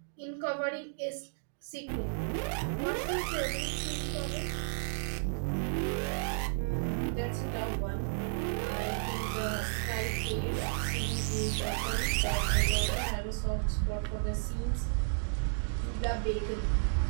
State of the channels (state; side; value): silent; left; digital silence